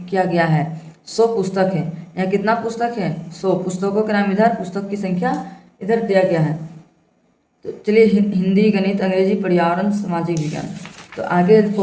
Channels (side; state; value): both; identical; correlation 1.00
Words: गया है। 100 पुस्तक है। यहाँ कितना पुस्तक है, 100 पुस्तकों के नाम इधर, पुस्तक की संख्या इधर दिया गया है। तो चलिए हिंदी, गणित, अंग्रेजी, पर्यावरण, सामाजिक विज्ञान। तो आगे